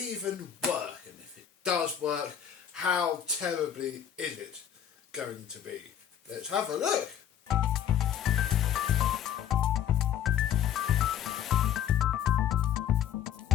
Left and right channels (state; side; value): quieter; right; 9.5 dB